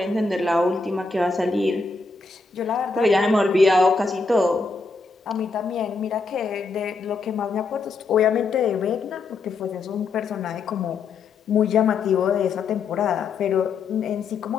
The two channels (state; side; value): quieter; right; 4.2 dB